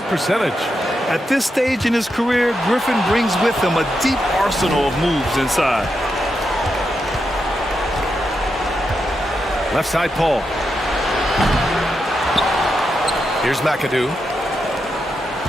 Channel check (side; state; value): both; normal; correlation 0.85